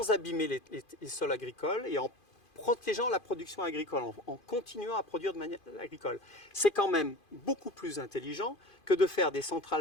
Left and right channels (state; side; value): late; right; 2.5 ms